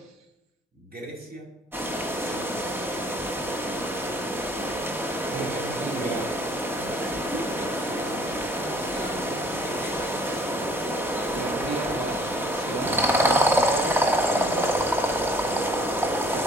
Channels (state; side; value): normal; both; correlation 0.56